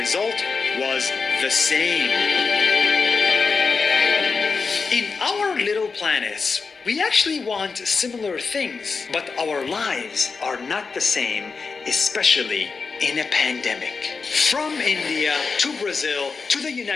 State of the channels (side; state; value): right; quieter; 4.8 dB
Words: was the same. In our little planets, we actually want similar things, but our lives are not the same, especially in a pandemic. From India to Brazil to the